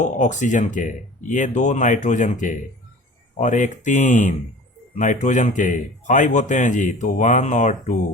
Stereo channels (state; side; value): normal; both; correlation 0.42